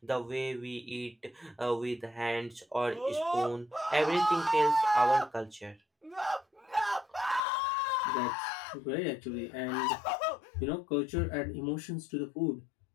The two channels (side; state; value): right; drops out; at 7.4 s